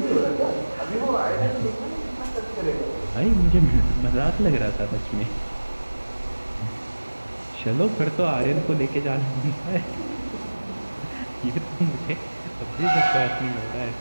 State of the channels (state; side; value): inverted; both; correlation -1.00